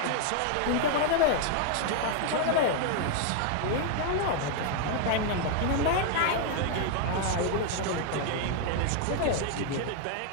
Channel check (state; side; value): different; both; correlation 0.00